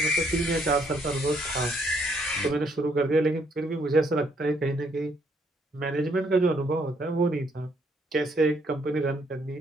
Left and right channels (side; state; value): both; normal; correlation 0.70